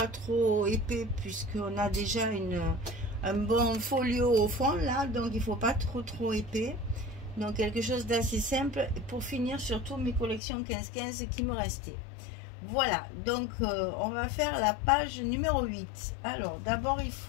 trop épais puisqu'on a déjà un bon folio au fond là. Donc, il ne faut pas trop épais. Donc, quelque chose d'assez simple pour finir surtout mes collections 15-15 qui me restaient. Voilà, donc on va faire la page numéro 8. Alors, d'abord, il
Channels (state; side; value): drops out; right; at 10.4 s